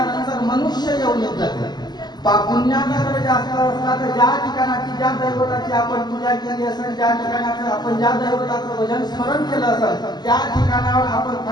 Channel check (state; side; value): late; right; 0.20 ms